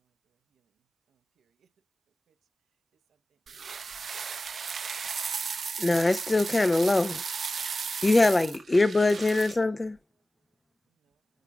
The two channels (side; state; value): both; normal; correlation 0.96